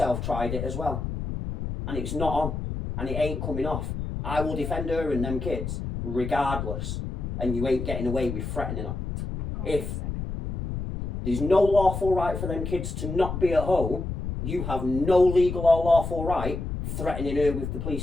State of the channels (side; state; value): left; noise; rumble, 5 dB below the sound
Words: tried it as well. And it's not on. And it ain't coming off. I will defend her and them kids regardless. And you ain't getting away with threatening her. If there's no lawful right for them kids to not be at home, you have no legal or lawful right threatening her with the